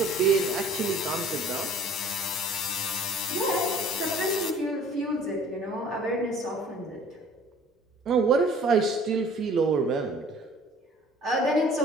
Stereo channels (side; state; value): both; normal; correlation 0.51